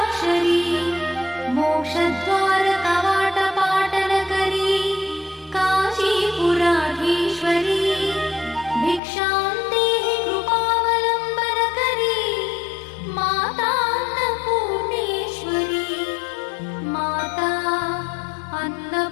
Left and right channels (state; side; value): drops out; right; at 9.0 s